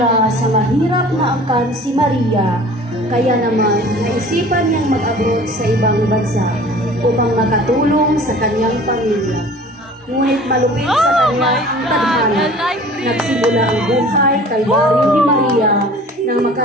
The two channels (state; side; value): normal; both; correlation 0.45